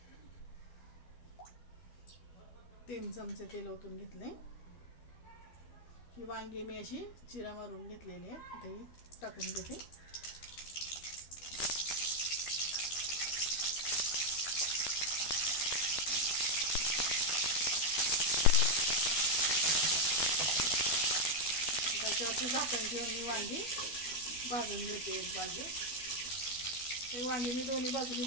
3 चमचे तेल ओतून घेतले। ही वांगी मी अशी चिरा मारून घेतलेली आहे, ते टाकून घेते। त्याच्यावरती झाकण ठेवून वांगी भाजून घेते एक बाजू। हे वांगी मी दोन्ही बाजूनी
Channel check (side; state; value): right; late; 12 ms